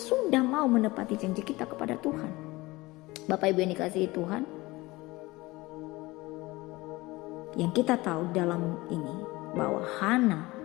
mau menepati janji kita kepada Tuhan? Bapak Ibu yang dikasihi Tuhan, yang kita tahu dalam ini bahwa Hana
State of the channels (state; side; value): quieter; right; 21.0 dB